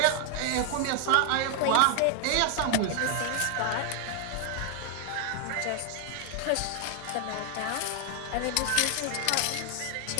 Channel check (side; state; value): both; different; correlation 0.00